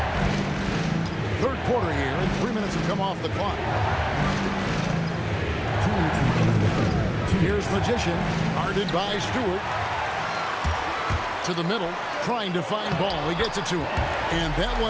Third quarter here, and 3 minutes have come off the clock. Here's Magician, guarded by Stewart. To the middle, trying to find Ball. He gets it to him, and that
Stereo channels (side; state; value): both; identical; correlation 1.00